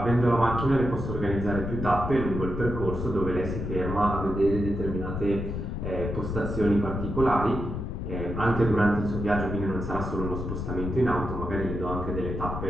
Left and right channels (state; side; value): noise; left; rumble, 4 dB below the sound